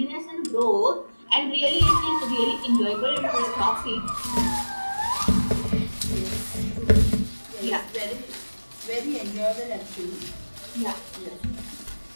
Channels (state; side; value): inverted; both; correlation -1.00